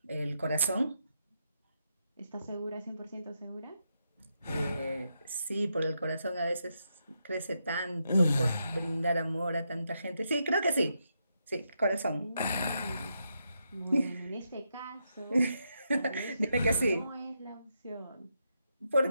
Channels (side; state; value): both; inverted; correlation -0.82